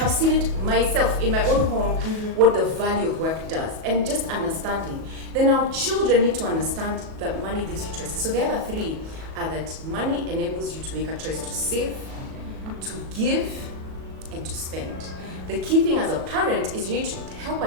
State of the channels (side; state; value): left; late; 37 ms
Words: seen it myself in my own home, what the value of work does, and just understanding. Then our children need to understand that money gives you choices. So the other 3 are that money enables you to make a choice to save, to give, and to spend. The key thing as a parent is you need to help